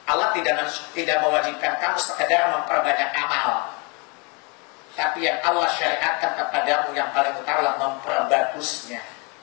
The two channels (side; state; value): right; quieter; 31.8 dB